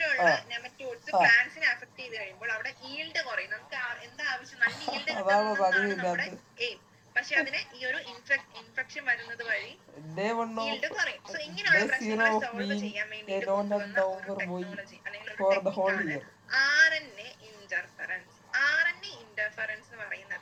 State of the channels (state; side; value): identical; both; correlation 1.00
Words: നെമറ്റോഡ്സ് പ്ലാന്റ്സിനെ അഫക്ട് ചെയ്ത് കഴിയുമ്പോൾ അവിടെ ഈൽഡ് കുറയും. നമുക്ക് എന്താ ആവശ്യം? നല്ല ഈൽഡ് കിട്ടുന്നതാണ് നമ്മുടെ എയിം. പക്ഷെ അതിന് ഈ ഒരു ഇൻഫെക്ഷൻ വരുന്നത് വഴി ഈൽഡ് കുറയും. സോ ഇങ്ങനെയുള്ള പ്രശ്നങ്ങളെ സോൾവ് ചെയ്യാൻ വേണ്ടിയിട്ട് കൊണ്ടുവന്ന ഒരു ടെക്നോളജി അല്ലെങ്കിൽ ഒരു ടെക്നിക്കാണ് RNA ഇന്റർഫറൻസ്. RNA ഇന്റർഫറൻസ് എന്ന്